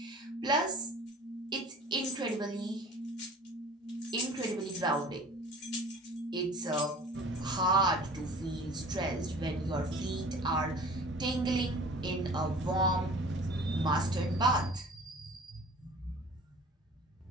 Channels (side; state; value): both; normal; correlation 0.44